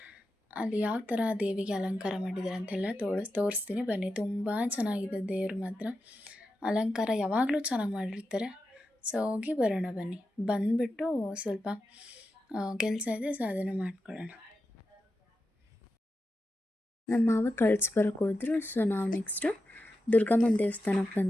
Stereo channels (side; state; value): both; normal; correlation 0.90